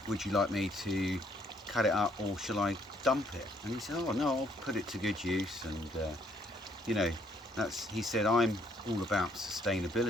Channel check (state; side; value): normal; both; correlation 0.67